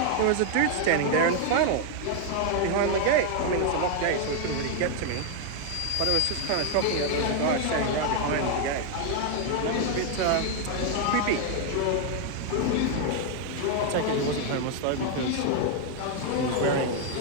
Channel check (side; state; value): both; different; correlation 0.00